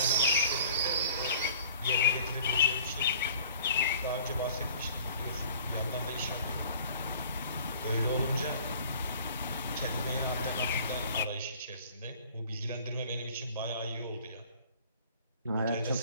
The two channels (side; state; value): both; inverted; correlation -0.50